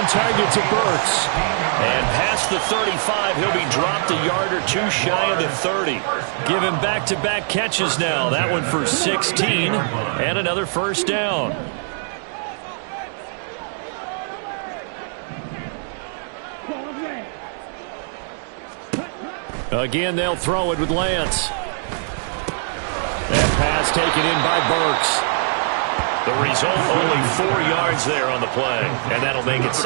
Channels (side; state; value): left; silent; digital silence